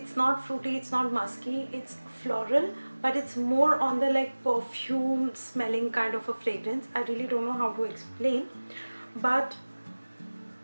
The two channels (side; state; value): both; inverted; correlation -1.00